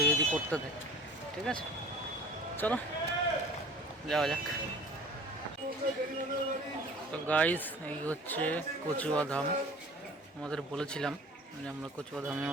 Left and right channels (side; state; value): both; normal; correlation 0.44